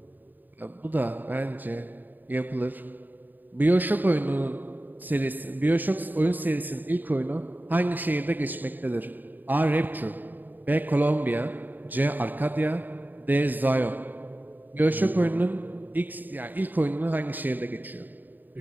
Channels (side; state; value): left; late; 0.088 ms